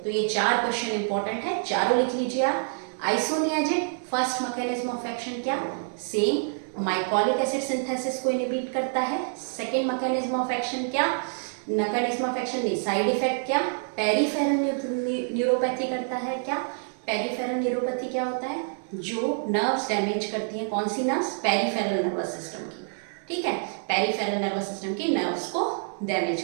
तो ये 4 क्वेश्चन इंपॉर्टेंट है, चारों लिख लीजिए आप। Isoniazid first mechanism of action क्या? सेम माइकोलिक एसिड सिंथेसिस को इनहिबिट करता है। सेकेंड मैकेनिज्म ऑफ एक्शन क्या, मैकेनिज्म ऑफ एक्शन नहीं, साइड इफेक्ट क्या, पेरिफेरल न्यूरोपैथी करता है। क्या पेरिफेरल न्यूरोपैथी क्या होता है, जो नर्व्स डैमेज करती हैं, कौन सी नर्व्स, पेरिफेरल नर्वस सिस्टम की, ठीक है, पेरिफेरल नर्वस सिस्टम की नर्व्स को डैमेज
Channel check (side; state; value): left; silent; digital silence